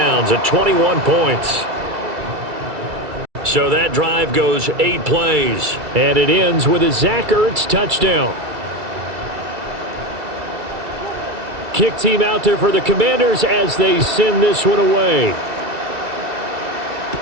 at 21 points. So that drive goes 8 plays. And it ends with a Zach Ertz touchdown. Kick team out there for the Commanders as they send this one away.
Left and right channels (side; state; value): left; late; 2.3 ms